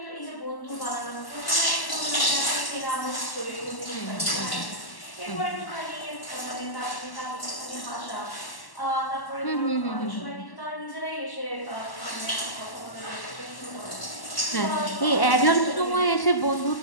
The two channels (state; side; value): late; right; 1.1 ms